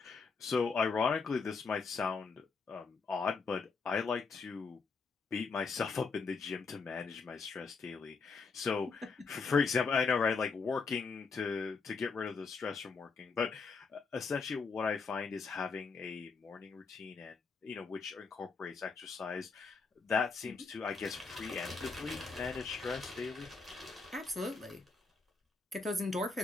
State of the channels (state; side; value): quieter; right; 4.7 dB